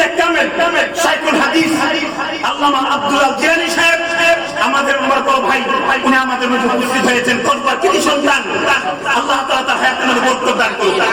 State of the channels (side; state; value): left; noise; rumble, 28 dB below the sound